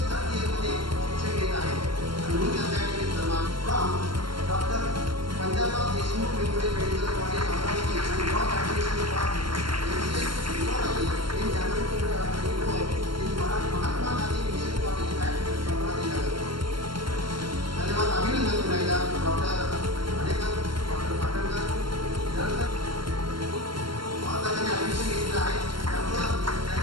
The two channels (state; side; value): late; left; 0.72 ms